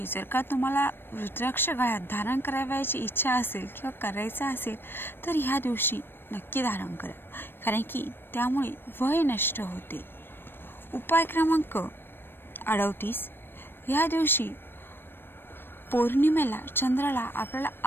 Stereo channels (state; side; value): late; right; 0.10 ms